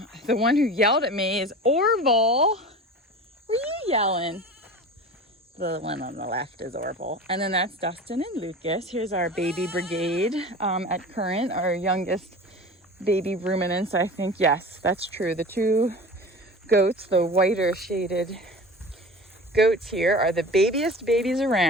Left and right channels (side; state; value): both; normal; correlation 0.35